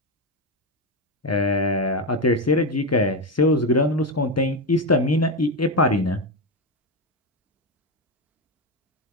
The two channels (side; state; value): both; normal; correlation 0.12